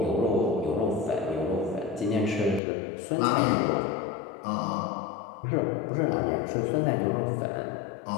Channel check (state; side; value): drops out; right; at 2.6 s